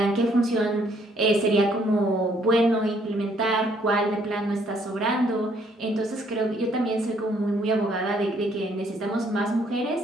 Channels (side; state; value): both; normal; correlation 0.66